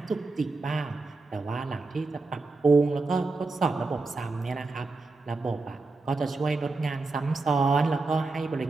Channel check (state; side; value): quieter; left; 3.6 dB